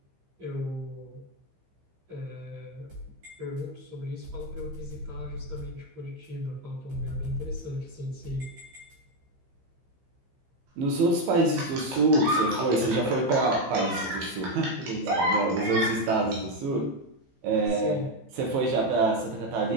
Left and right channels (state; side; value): late; left; 15 ms